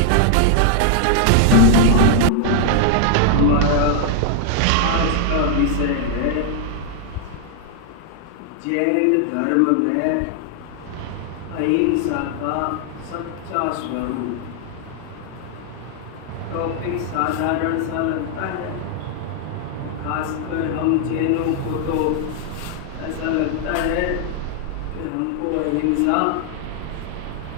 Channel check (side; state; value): both; different; correlation 0.00